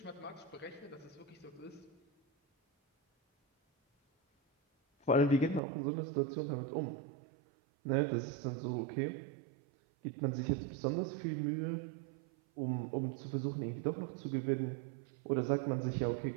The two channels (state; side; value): drops out; left; at 5.6 s